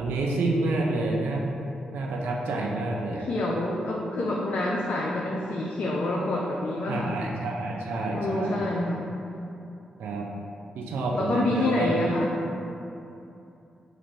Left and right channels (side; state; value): both; normal; correlation 0.76